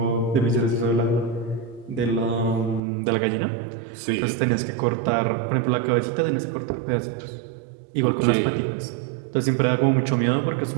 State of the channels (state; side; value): drops out; left; at 2.8 s